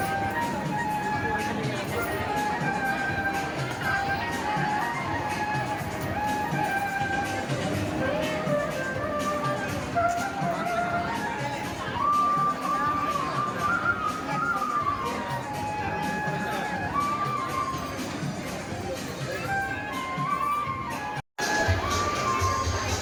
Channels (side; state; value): both; identical; correlation 1.00